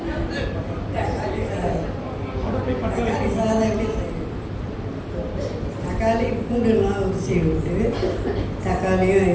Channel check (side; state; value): both; identical; correlation 1.00